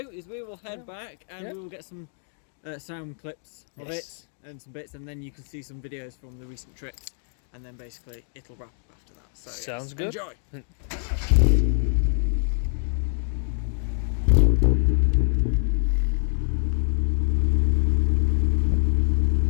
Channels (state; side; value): silent; right; 61 dB below the other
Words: is we will head back and we will get some sound clips of it and some bits, and then you can see some videos from the recent trips, and then basically it'll wrap up after that. So sounds good. Enjoy.